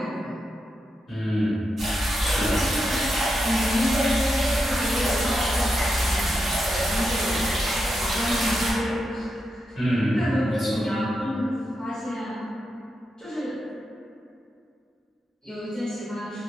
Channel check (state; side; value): normal; both; correlation 0.86